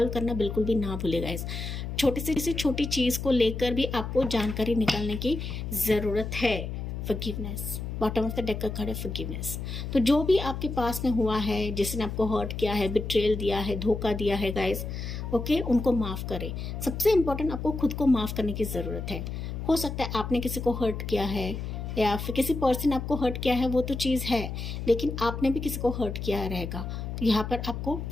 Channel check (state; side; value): noise; left; hum, 5 dB below the sound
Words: करना बिल्कुल भी ना भूलेगा। इस छोटी से छोटी चीज़ को लेकर भी आपको जानकारी निकालने की ज़रूरत है। Forgiveness, bottom of the deck का कार्ड है फॉरगिवनेस। तो जो भी आपके पास में हुआ है, जिसने आपको हर्ट किया है, बिट्रेल दिया है, धोखा दिया है गाइस, ओके, उनको माफ़ करें। सबसे इम्पोर्टेंट, आपको खुद को माफ़ करने की ज़रूरत है। हो सकता है आपने किसी को हर्ट किया है या फिर किसी पर्सन आपको हर्ट किया है, वो तो चीज़ है, लेकिन आपने भी किसी को हर्ट किया रहेगा, तो यहाँ पर आपको